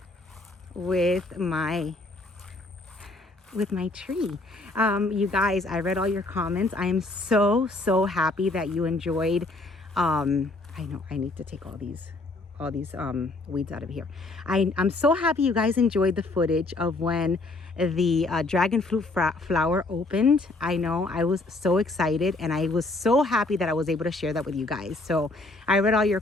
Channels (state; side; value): quieter; right; 3.0 dB